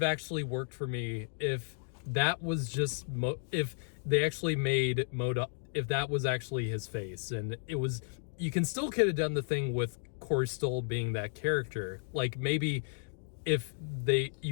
actually worked for me if that was just if they actually made MODOK, if that was actually his face, and it was, you can still could have done the thing with Corey Stoll being that character. Like maybe if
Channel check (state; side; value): silent; right; digital silence